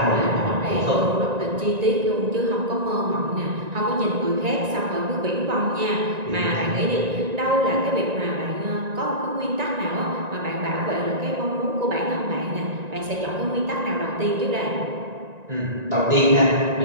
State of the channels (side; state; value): left; late; 1.9 ms